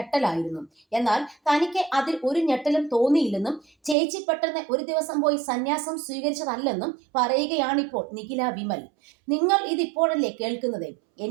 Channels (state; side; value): drops out; left; at 4.0 s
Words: എന്നാൽ തനിക്ക് അതിൽ ഒരു ഞെട്ടലും തോന്നിയില്ലെന്നും ചേച്ചി പെട്ടെന്ന് ഒരു ദിവസം പോയി സന്യാസം സ്വീകരിച്ചതല്ലെന്നും പറയുകയാണിപ്പോൾ നിഖില വിമൽ. നിങ്ങൾ ഇതിപ്പോഴല്ലേ കേൾക്കുന്നത്?